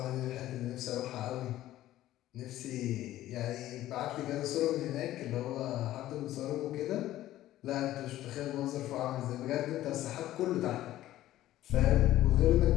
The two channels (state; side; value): quieter; right; 14.3 dB